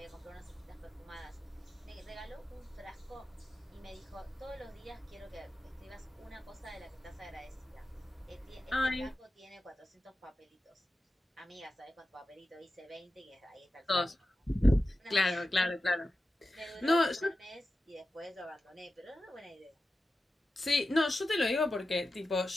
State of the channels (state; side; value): normal; both; correlation 0.93